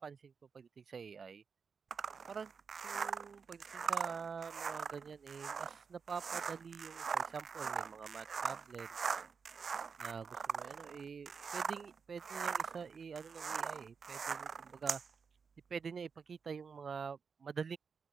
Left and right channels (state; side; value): quieter; left; 5.8 dB